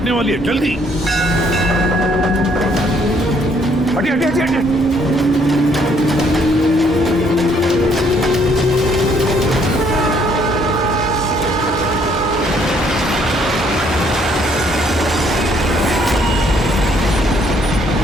वाली है, जल्दी। हटिए हटिए हटिए हटिए।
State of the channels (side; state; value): both; normal; correlation 0.66